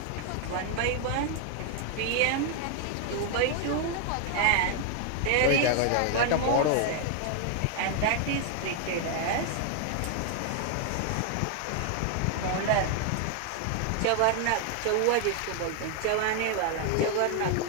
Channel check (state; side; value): different; both; correlation 0.00